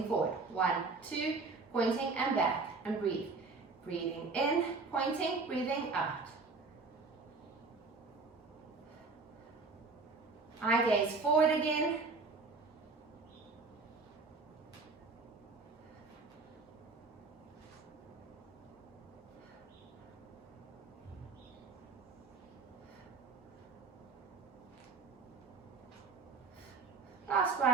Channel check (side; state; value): left; quieter; 4.1 dB